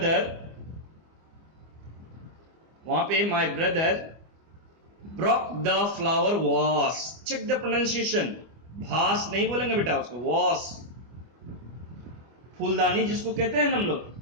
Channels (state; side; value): late; left; 25 ms